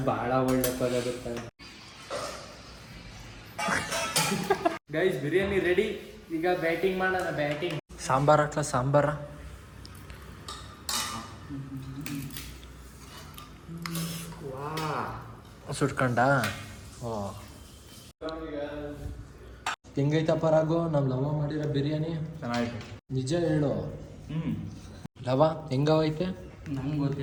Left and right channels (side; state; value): both; identical; correlation 1.00